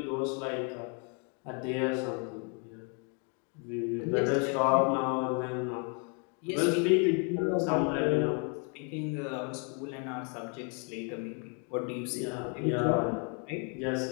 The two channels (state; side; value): quieter; right; 37.9 dB